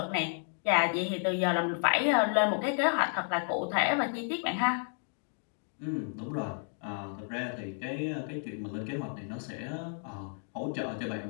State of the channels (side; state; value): right; silent; 56 dB below the other